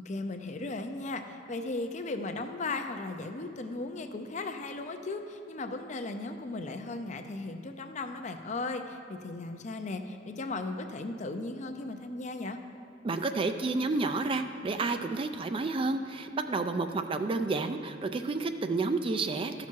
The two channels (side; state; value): both; normal; correlation 0.44